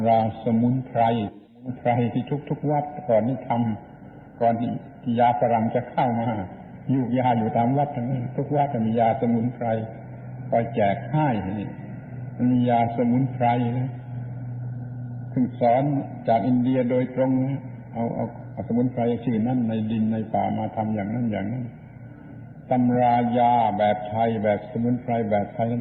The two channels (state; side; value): identical; both; correlation 1.00